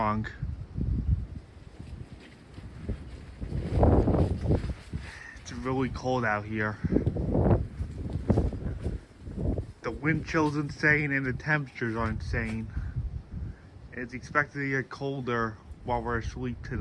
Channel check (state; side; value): identical; both; correlation 1.00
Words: It's really cold out here. The wind chill's insane and the temperatures are insane. It's expected to get colder while we're asleep